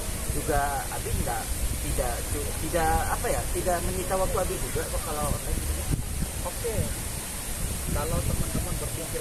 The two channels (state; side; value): identical; both; correlation 1.00